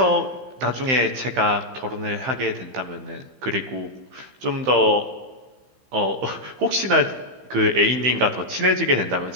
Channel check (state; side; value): late; left; 15 ms